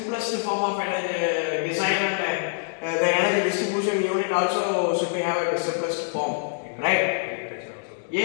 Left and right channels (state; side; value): silent; right; digital silence